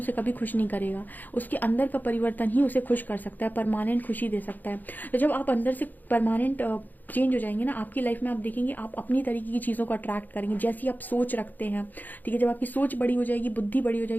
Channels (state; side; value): late; right; 0.085 ms